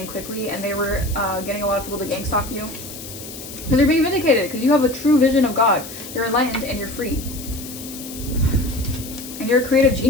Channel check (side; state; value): left; noise; hiss, 12 dB below the sound